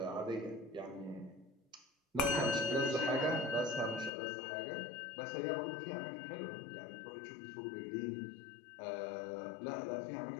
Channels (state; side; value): drops out; right; at 4.1 s